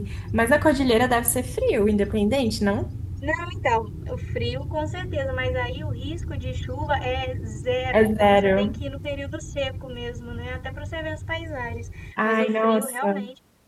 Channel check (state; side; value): identical; both; correlation 1.00